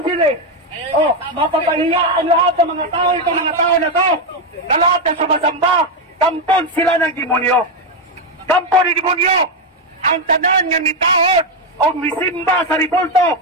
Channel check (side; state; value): both; normal; correlation 0.06